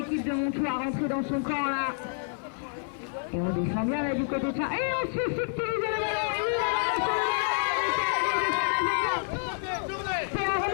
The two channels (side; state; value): right; silent; 55 dB below the other